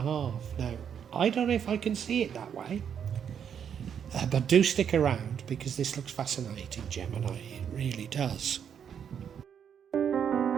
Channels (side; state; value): left; quieter; 8.1 dB